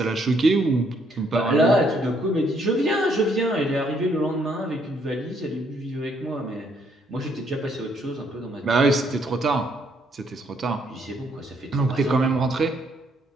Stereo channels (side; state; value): both; normal; correlation 0.69